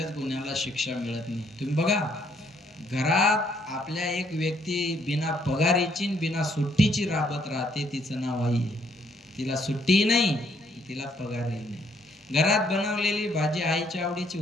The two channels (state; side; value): normal; both; correlation 0.69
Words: गुन्ह्याला शिक्षा मिळत नाही. तुम्ही बघा, घरात आपल्या एक व्यक्ती बिना पगारीची बिना सुट्टीची राबत राहते, तिचं नाव आई आहे. तिला सुट्टी नाही, तिला पगारही नाही. घरात बनवलेली भाजी आईच्या आवडीची